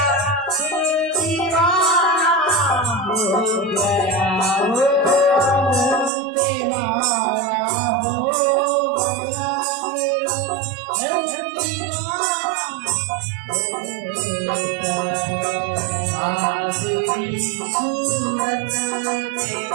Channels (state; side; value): drops out; left; at 6.1 s